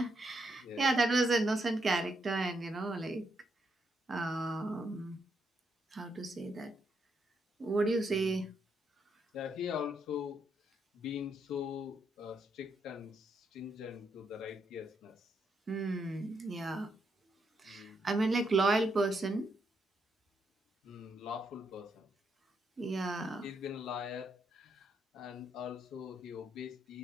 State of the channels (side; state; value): both; normal; correlation 0.78